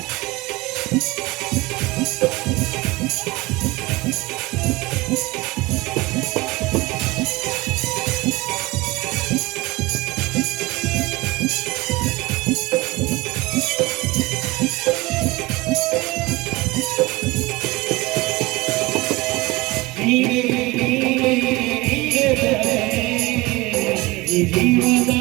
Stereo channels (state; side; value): quieter; left; 21.8 dB